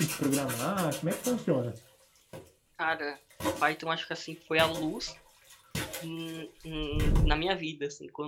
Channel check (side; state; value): both; identical; correlation 1.00